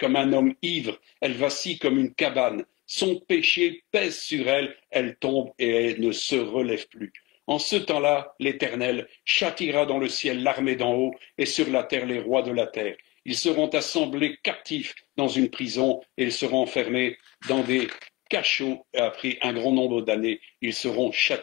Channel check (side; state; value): right; quieter; 21.2 dB